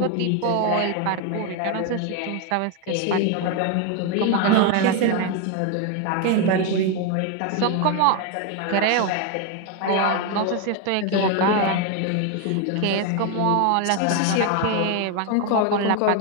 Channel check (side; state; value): both; different; correlation 0.01